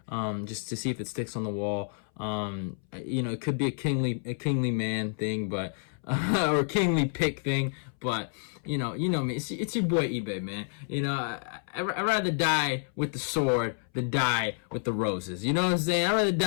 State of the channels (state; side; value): silent; right; 58 dB below the other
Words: Just to see if it sticks on the wall. You know, it could be a kingly man thing, but or kingly pick thing, but you know me. It's your boy eBay, man. You know, I'd rather die with the sword than die with the roses. You know what I'm saying? I'd rather